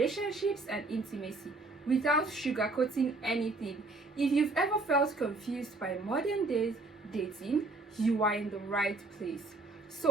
and intimacy without sugarcoating anything. If you've ever felt confused by modern day dating, you are in the right place.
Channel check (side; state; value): left; quieter; 3.3 dB